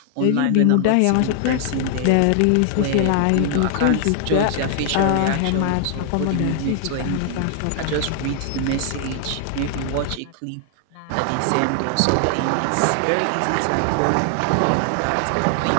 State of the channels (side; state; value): both; different; correlation 0.00